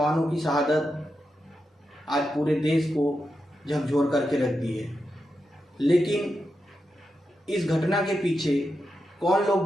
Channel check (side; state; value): both; normal; correlation 0.88